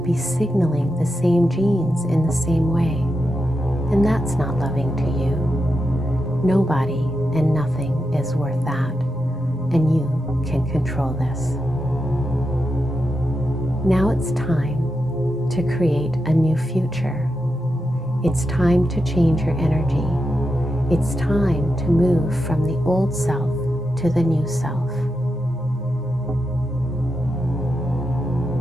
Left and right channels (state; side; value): normal; both; correlation 0.87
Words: be signaling the same genes in the same way. And that's not loving to you. Nobody and nothing is worth that. And you can control this. Now it's time to create a new future. It's time to change your energy. It's time to move from the old self to the new self.